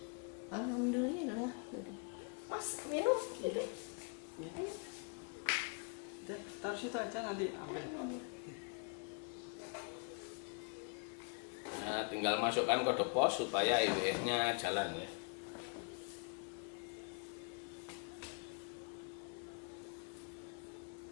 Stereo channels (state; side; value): quieter; right; 37.4 dB